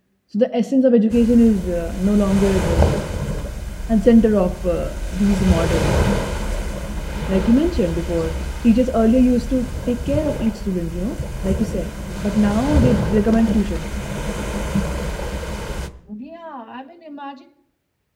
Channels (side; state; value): both; identical; correlation 1.00